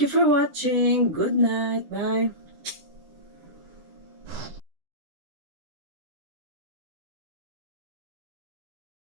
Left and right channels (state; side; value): late; left; 10 ms